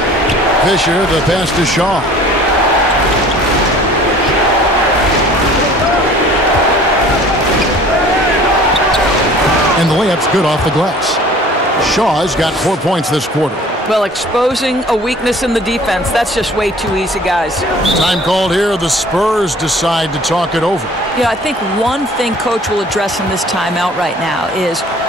Fisher, the pass to Shaw. And the layup's good off the glass. Shaw's got 4 points this quarter. Well, exposing a weakness in the defense, that's just way too easy, guys. Time called here. The Spurs decide to talk it over. Yeah, I think one thing Coach will address in this timeout right now is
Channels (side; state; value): both; normal; correlation 0.49